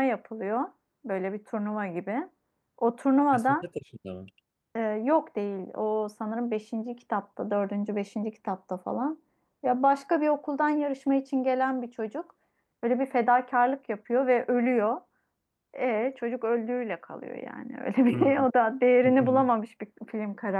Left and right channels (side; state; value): both; identical; correlation 1.00